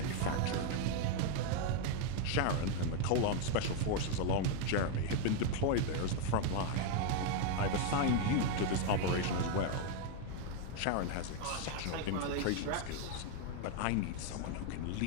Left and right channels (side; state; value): both; different; correlation 0.01